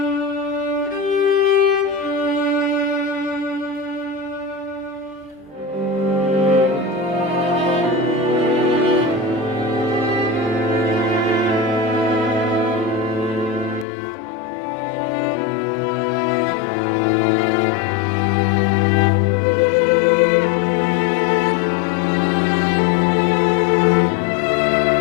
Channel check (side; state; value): right; drops out; at 13.9 s